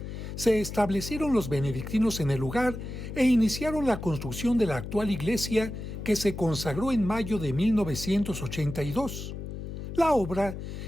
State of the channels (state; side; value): noise; left; hum, 8 dB below the sound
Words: se establecieron los benedictinos en el lugar e iniciaron la construcción de la actual iglesia que se consagró en mayo de 1982. La obra